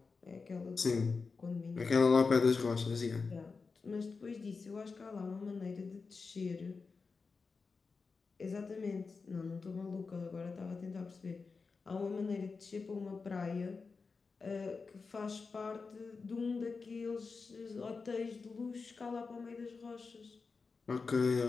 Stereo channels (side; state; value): right; quieter; 4.6 dB